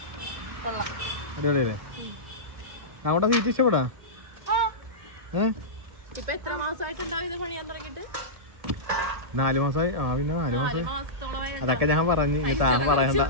അടിപൊളിയല്ലേ? അങ്ങോട്ടാ സീറ്റ് ഇഷ്ടപ്പെടാ? 4 മാസമായി. പിന്നെ 4 മാസമായി. അതൊക്കെ ഞാൻ പറഞ്ഞു, താൻ പറയണ്ട.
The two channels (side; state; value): left; late; 1.7 ms